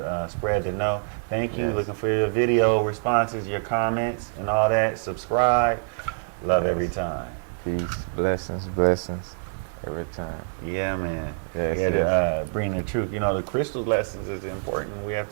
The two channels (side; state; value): left; silent; digital silence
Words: spread the know. Thank you. Looking for your video responses, your comments, and all that. Subscribe. Love every time. Peace. Blessings every time. Yeah, man. Yes, we had to bring the truth. The crystal lessons is important. We have